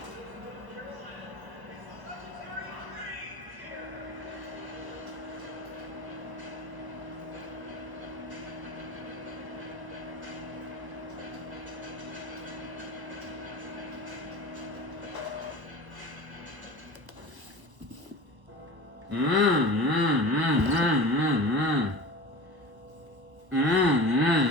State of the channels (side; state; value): left; late; 1.2 ms